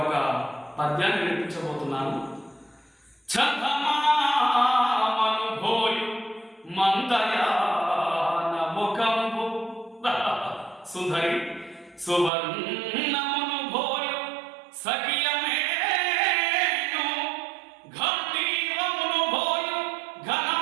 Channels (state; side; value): drops out; left; at 12.3 s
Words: ఒక పద్యాన్ని వినిపించబోతున్నాను. చందమామనుభోయు మందయాన ముఖంబు సుధరి సువర్ణమును భోయు సఖియమేను ఘంటీవమును భోయు